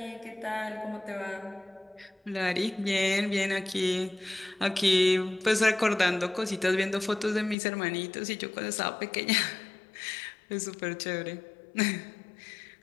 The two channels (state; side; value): drops out; right; at 7.6 s